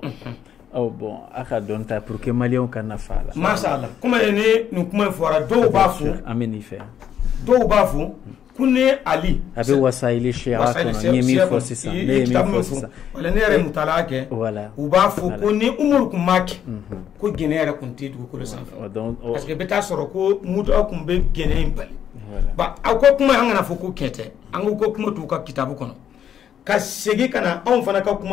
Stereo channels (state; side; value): quieter; right; 9.3 dB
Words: Oh bon, aka donta pour que Malion kana fala. Mashallah. Comment est nous comment fora do bafu. Ameni fait. Do bafu kune Ali. Abe wasaili shira kono nyemi fosi sa. Nyemi fosi sa. Wala nere mutalake. Voilà. Ubafu kune umur kumaki. Ko genera kunti du ko le sanfa. Parce que beta soro ko muto akumbe gene impali. Ba ako kuma hangana foko kete. Ango ko kuma tu ka kitabu kono. Ka segi kana on fana ka